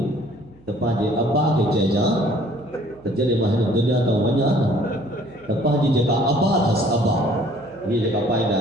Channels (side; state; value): right; noise; hum, 27 dB below the sound